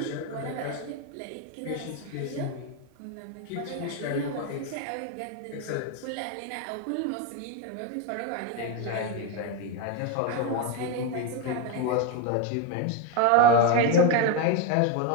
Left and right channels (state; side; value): different; both; correlation 0.02